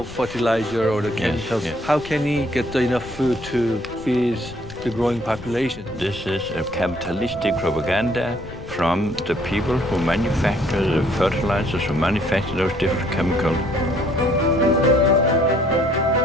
fertilizer or the chemicals, how can he get enough food to feed the growing population? This is a capitalistic propaganda from the people who manufacture the fertilizers, who manufacture those different chemicals.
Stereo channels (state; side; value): noise; left; rumble, 16 dB below the sound